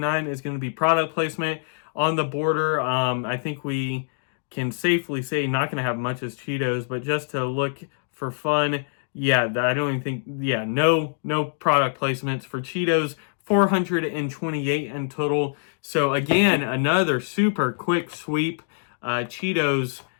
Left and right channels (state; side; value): silent; right; digital silence